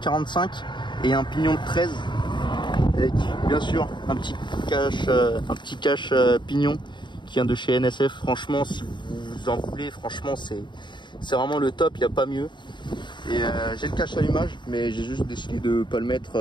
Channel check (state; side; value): late; right; 0.22 ms